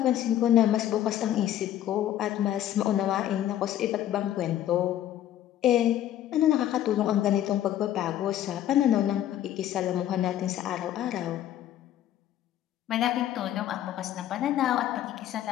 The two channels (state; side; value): quieter; right; 11.9 dB